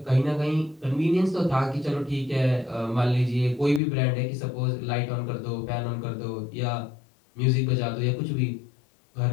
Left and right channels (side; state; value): right; drops out; at 3.8 s